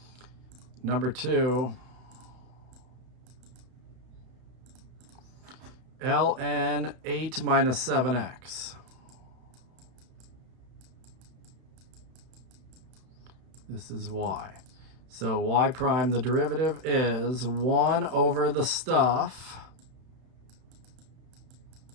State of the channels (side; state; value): left; late; 31 ms